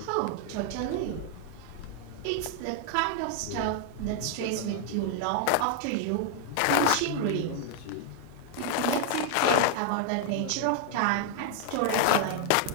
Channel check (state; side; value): different; both; correlation 0.00